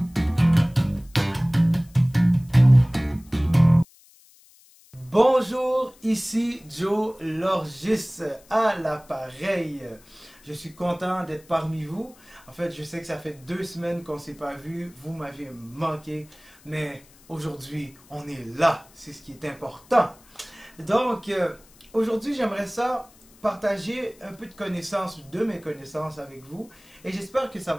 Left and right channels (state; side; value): noise; left; hiss, 27 dB below the sound